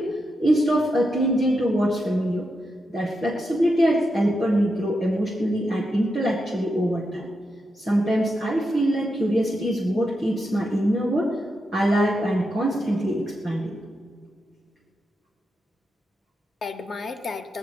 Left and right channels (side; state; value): both; normal; correlation 0.86